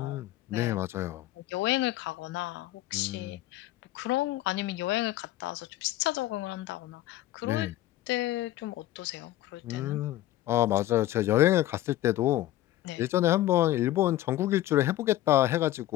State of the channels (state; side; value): quieter; right; 14.9 dB